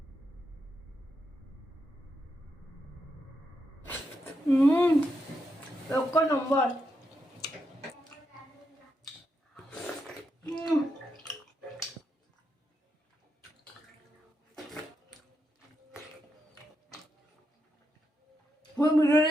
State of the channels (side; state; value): both; normal; correlation 0.83